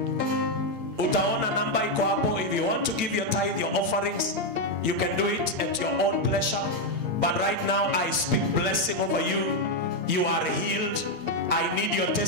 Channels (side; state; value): left; late; 8.7 ms